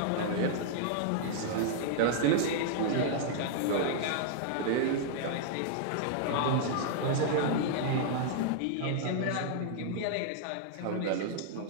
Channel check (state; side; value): different; both; correlation -0.01